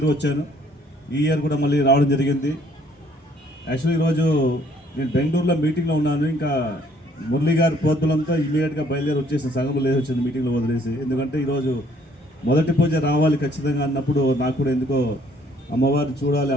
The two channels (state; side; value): normal; both; correlation 0.62